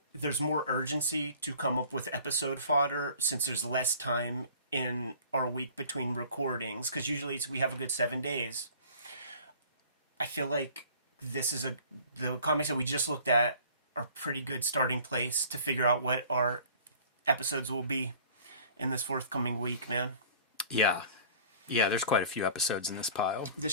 there's more urgency to come up with episode fodder since there's less time in our week between recordings, because usually we have a good 7 days. I feel like the comics that we just looked at are a pretty good starting place to figure out what our episodes will be in this forthcoming week, man. Yeah, there's quite a few episodes in this pile. The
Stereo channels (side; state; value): both; inverted; correlation -0.48